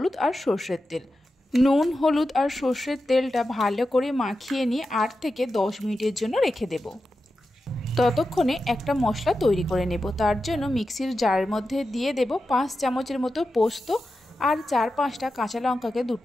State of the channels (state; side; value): normal; both; correlation 0.91